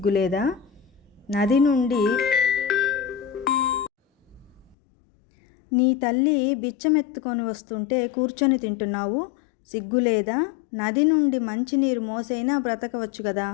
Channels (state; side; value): drops out; right; at 4.8 s